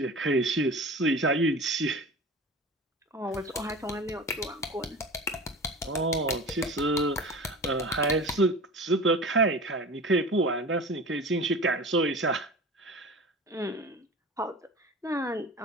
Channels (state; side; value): normal; both; correlation 0.35